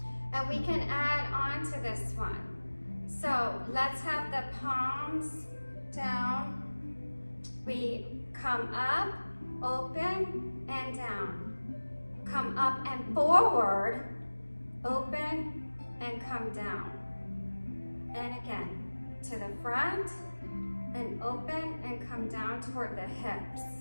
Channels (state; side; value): inverted; both; correlation -1.00